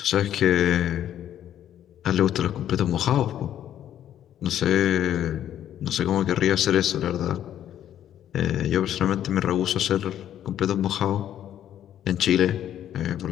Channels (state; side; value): quieter; right; 10.9 dB